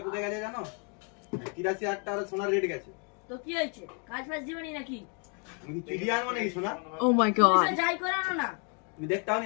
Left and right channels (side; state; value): right; quieter; 38.0 dB